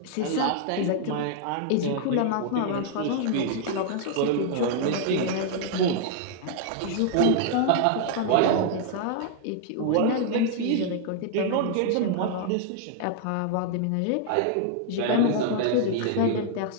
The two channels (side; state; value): both; different; correlation 0.00